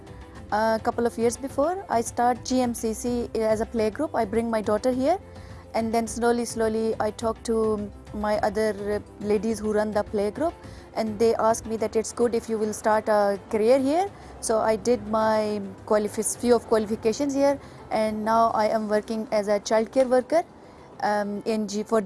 A couple of years before I start GMCC as a playgroup. I bring my daughter here and then slowly I talk to my other ladies who run the playgroup, and they asked me that it's good if you will start a career here. So I did my few of qualifications here, and now I am working as a childcare worker for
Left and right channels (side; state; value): both; identical; correlation 1.00